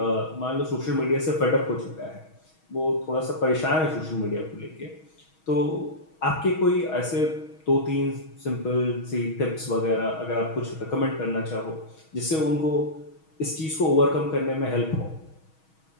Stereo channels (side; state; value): right; late; 6.3 ms